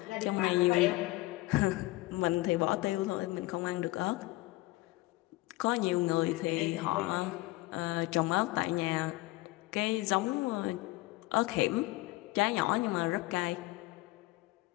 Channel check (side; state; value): right; quieter; 20.2 dB